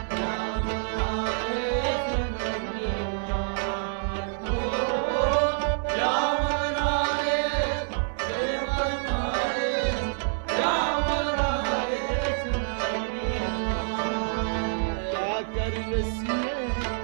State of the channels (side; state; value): left; silent; digital silence